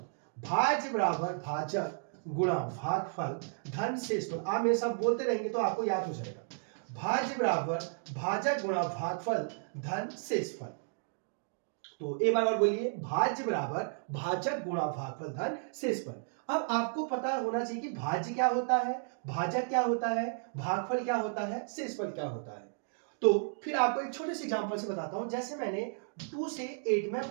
भाज्य बराबर भाजक गुणा भागफल धन शेषफल। आप मेरे साथ बोलते रहेंगे तो आपको याद हो जाएगा। भाज्य बराबर भाजक गुणा भागफल धन शेषफल। तो एक बार और बोलिए, भाज्य बराबर भाजक गुणा भागफल धन शेषफल। अब आपको पता होना चाहिए कि भाज्य क्या होता है, भाजक क्या होता है, भागफल क्या होता है, शेषफल क्या होता है। तो फिर आपको एक छोटे से एग्जांपल से बताता हूं। जैसे मैंने 2 से 8 में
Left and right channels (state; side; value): silent; left; digital silence